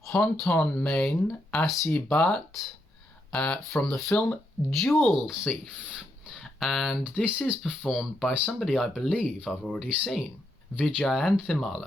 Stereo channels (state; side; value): normal; both; correlation 0.79